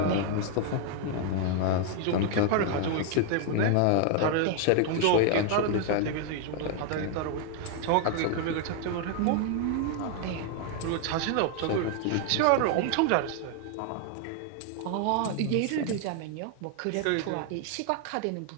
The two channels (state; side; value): different; both; correlation 0.00